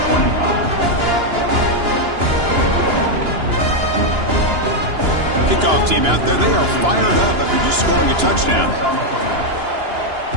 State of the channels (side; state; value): left; late; 2.9 ms